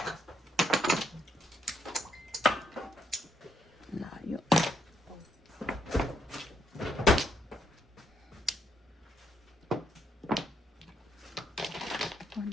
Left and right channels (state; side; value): normal; both; correlation 0.75